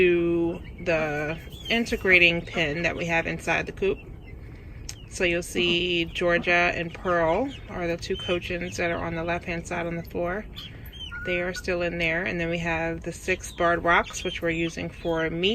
the integrating pen that we have inside the coop. So you'll see Georgia and Pearl are the 2 cochins that are on the left hand side on the floor. They are still in there. And then we have the 6 barred rocks, which we're using for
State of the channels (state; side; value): identical; both; correlation 1.00